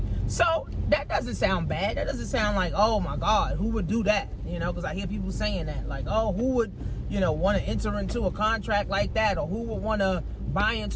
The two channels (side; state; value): both; identical; correlation 1.00